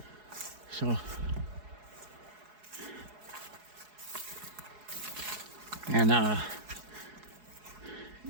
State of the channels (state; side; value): late; left; 4.8 ms